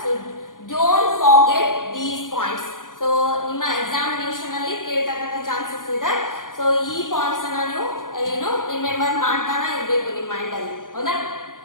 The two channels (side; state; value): right; late; 0.89 ms